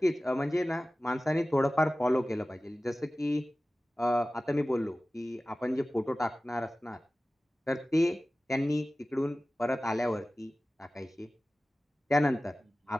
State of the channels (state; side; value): normal; both; correlation 0.96